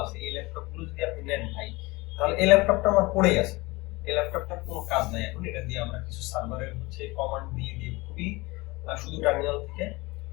আছে, এই ল্যাপটপ গুলো যদি আপনি নেন ভাই, তাহলে এই ল্যাপটপটা আমার পড়েই আছে, এই ল্যাপটপটার কোনো কাজ নাই এখন। এটা দিয়ে আমরা কিছু সার্ভারের হচ্ছে কমান্ড দিয়ে দিয়ে খুবই শুধু টার্মিনাল থেকে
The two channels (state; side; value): quieter; right; 23.0 dB